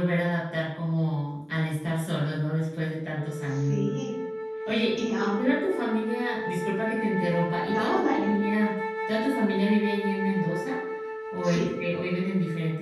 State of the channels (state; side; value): identical; both; correlation 1.00